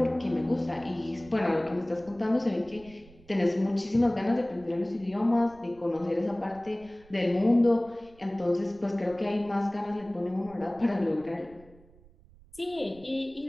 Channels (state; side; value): noise; right; rumble, 25 dB below the sound